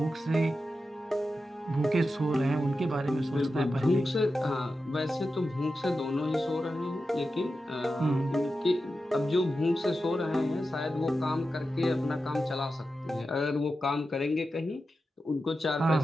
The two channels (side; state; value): both; normal; correlation 0.91